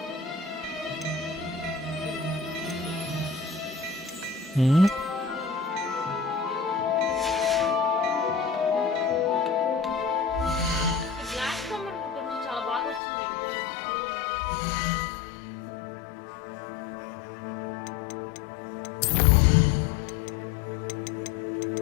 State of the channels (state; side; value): drops out; right; at 13.0 s